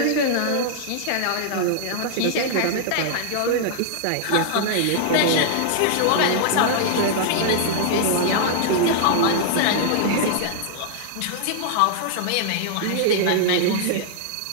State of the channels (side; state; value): both; different; correlation -0.01